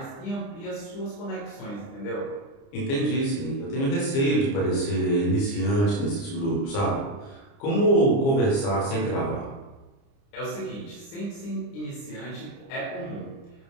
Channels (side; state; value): right; late; 29 ms